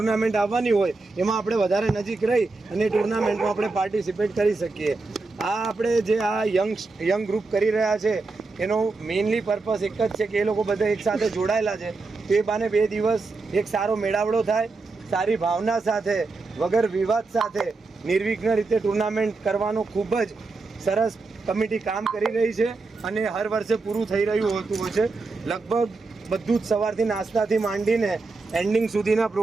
આવવાની હોય એમાં આપણે વધારે નજીક રહી અને ટુર્નામેન્ટમાં આપણે પાર્ટિસિપેટ કરી શકીએ. આ આપણે જે આ યંગ ગ્રુપ કરી રહ્યા છે એનો મેઇનલી પર્પસ એક જ છે કે એ લોકો બધા એક સાથે જોડાયેલા છે, તો એ બાને 2 દિવસ એક સારો મેળાવડો થાય, સારી ભાવના સાથે વગર વિવાદ સાથે નિર્વિઘ્ન રીતે ટુર્નામેન્ટ કરવાનો ખૂબ જ સરસ કમિટી કામ કરી રહી છે અને હર વર્ષે પૂરું થઈ રહ્યું હોતું હોય છે. લગભગ બધું જ સવારથી નાસ્તાથી માંડીને એન્ડિંગ સુધીના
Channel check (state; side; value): quieter; left; 3.7 dB